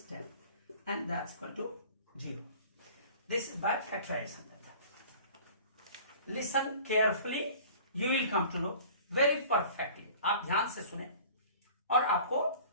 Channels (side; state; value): both; inverted; correlation -0.45